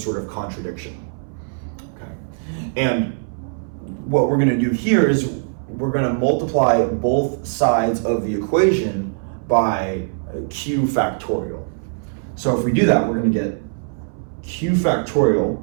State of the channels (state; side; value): silent; left; 62 dB below the other